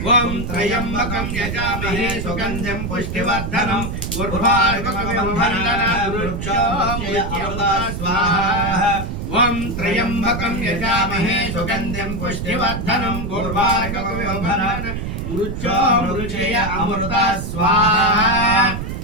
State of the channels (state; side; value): noise; right; rumble, 5 dB below the sound